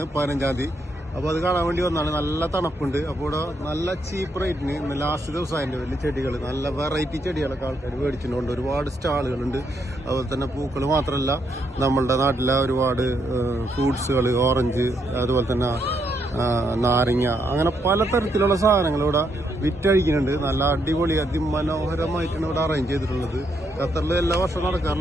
15-ാം തീയതി. അപ്പോൾ അത് കാണാൻ വേണ്ടി വന്നാണ്. നല്ല തണുപ്പുണ്ട്. അപ്പോൾ ഇവിടെ നല്ല ചീപ്പ് റേറ്റിന് ഇന്ന് ലാസ്റ്റ് ദിവസം അതിൻ്റെ വലിയ ചെടികൾ, നല്ല വെറൈറ്റി ചെടികളൊക്കെ ആൾക്കാർ മേടിച്ചിട്ടുണ്ട്. ഒരുപാട് സ്റ്റാളുകളുണ്ട്. അതുപോലെ തന്നെ പൂക്കൾ മാത്രമല്ല, നമ്മളുടെ നാട്ടിലെ ഒരുപാട് ഫ്രൂട്ട്സുകൾ, ഓറഞ്ച്, അതുപോലെ തന്നെ നാരങ്ങ, അങ്ങനെ പലതരത്തിലുള്ള സാധനങ്ങൾ ഇവിടെ വിറ്റഴിക്കുന്നുണ്ട്. നല്ല അടിപൊളി അതിമനോഹരമായിട്ടാണ് ഇവിടെ അറേഞ്ച് ചെയ്തിട്ടുള്ളത്. ഖത്തറിൽ എല്ലാ വർഷവും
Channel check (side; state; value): both; normal; correlation 0.77